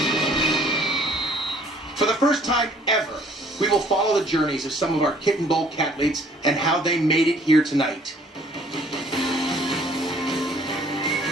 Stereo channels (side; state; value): both; normal; correlation 0.58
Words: For the first time ever, we will follow the journeys of some of our Kitten Bowl cathletes and how they made it here tonight.